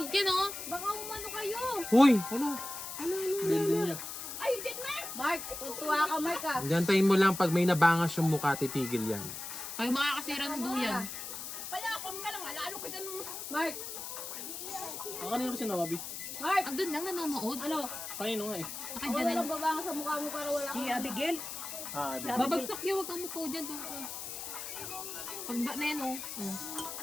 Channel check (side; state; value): left; noise; hiss, 7 dB below the sound